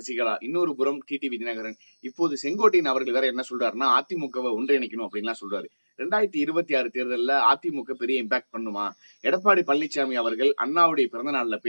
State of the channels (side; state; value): both; inverted; correlation -1.00